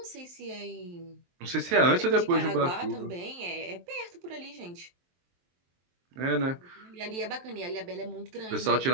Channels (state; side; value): late; left; 23 ms